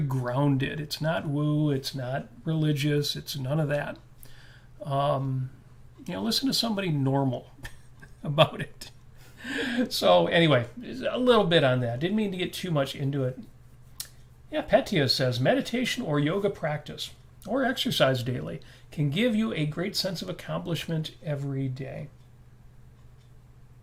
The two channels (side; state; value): both; identical; correlation 1.00